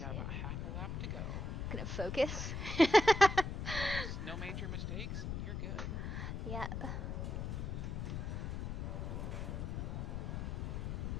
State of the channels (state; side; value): noise; left; rumble, 3 dB below the sound